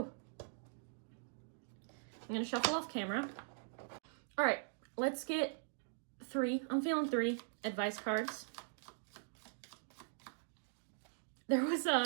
I'm going to shuffle off camera. All right, let's get 3. I'm feeling 3 advice cards. There was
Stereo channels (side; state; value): left; silent; digital silence